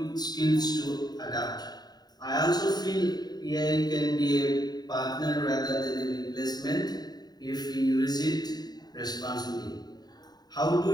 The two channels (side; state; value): right; late; 0.20 ms